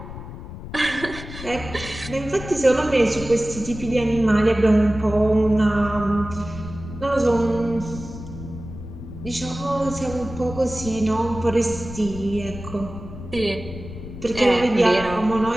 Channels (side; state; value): left; noise; rumble, 12 dB below the sound